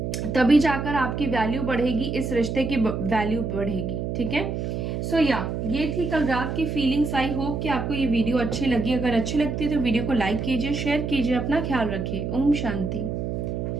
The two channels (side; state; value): right; noise; hum, 3 dB below the sound